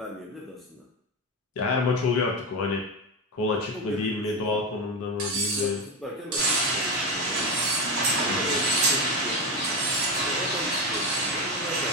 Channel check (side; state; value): both; normal; correlation 0.14